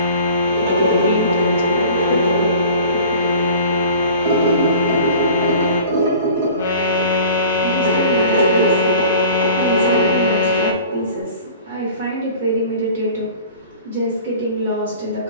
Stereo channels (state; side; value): inverted; both; correlation -0.45